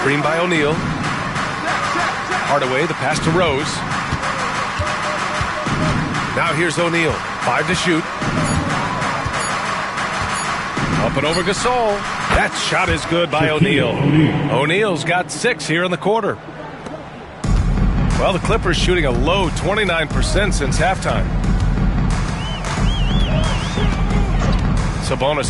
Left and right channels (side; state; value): both; identical; correlation 1.00